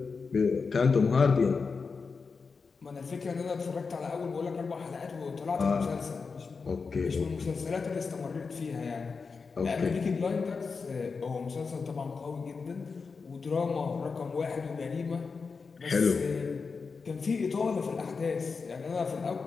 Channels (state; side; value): quieter; right; 4.9 dB